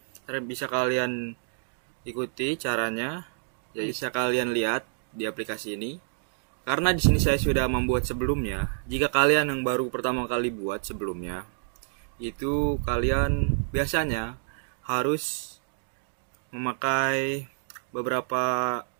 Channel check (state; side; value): silent; left; digital silence